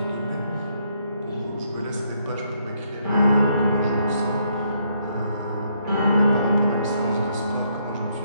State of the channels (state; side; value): inverted; both; correlation -0.73